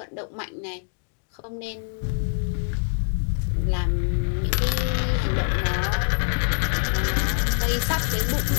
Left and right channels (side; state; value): right; silent; 62 dB below the other